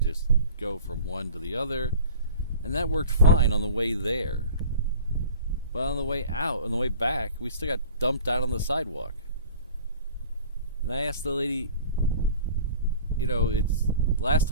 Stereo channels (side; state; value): both; inverted; correlation -0.42